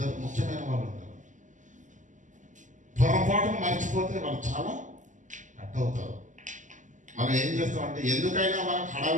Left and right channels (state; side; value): late; left; 0.37 ms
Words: ముఖ్యమైన వాళ్ళు ఉంటారు. పొరపాటును మర్చిపోతే వాళ్ళు చాలా కట్ అవుతారు. మనం ఏం చేస్తాం అంటే ఎందుకైనా మనకు